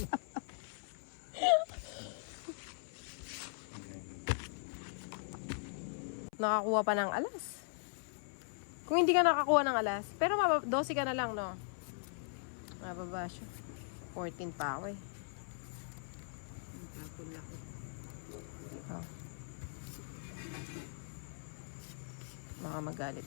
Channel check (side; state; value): right; silent; 51 dB below the other